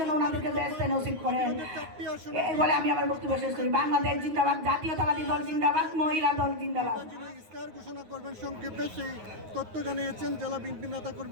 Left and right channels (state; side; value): late; left; 9.5 ms